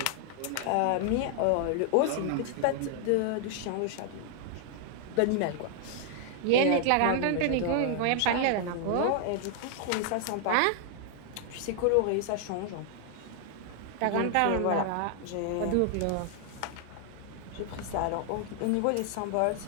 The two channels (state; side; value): different; both; correlation 0.00